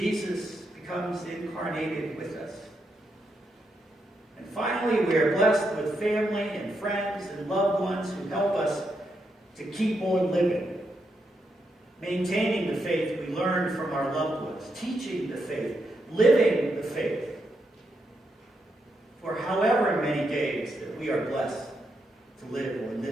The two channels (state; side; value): normal; both; correlation 0.82